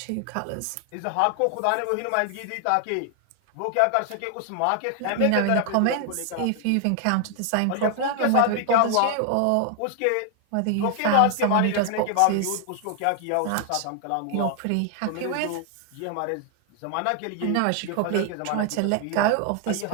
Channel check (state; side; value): different; both; correlation 0.00